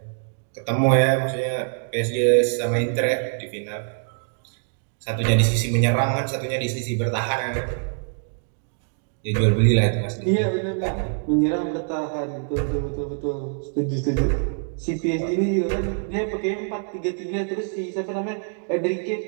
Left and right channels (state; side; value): silent; left; 60 dB below the other